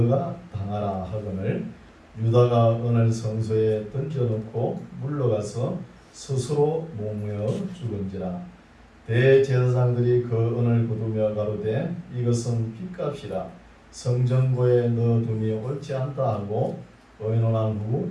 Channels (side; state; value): both; identical; correlation 1.00